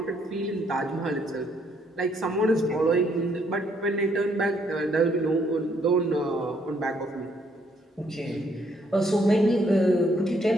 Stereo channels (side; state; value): both; normal; correlation 0.70